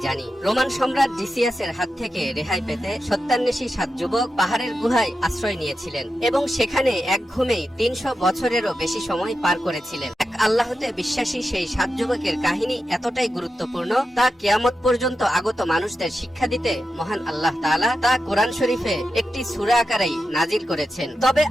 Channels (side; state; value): both; normal; correlation 0.90